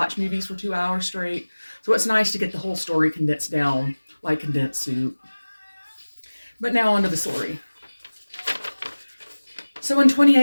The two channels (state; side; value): inverted; both; correlation -1.00